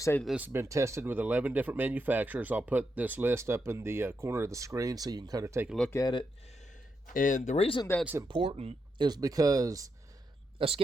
that this has been tested with 11 different manufacturers. I'll put this list up in the corner of the screen so you can kind of take a look at it. And the reason that's important is because a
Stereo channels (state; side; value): normal; both; correlation 0.84